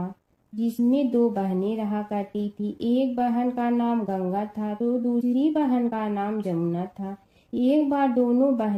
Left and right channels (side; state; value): both; identical; correlation 1.00